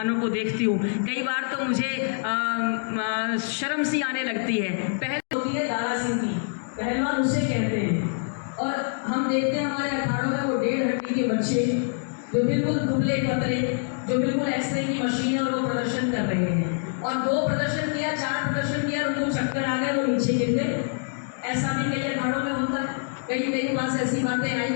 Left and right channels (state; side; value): silent; right; digital silence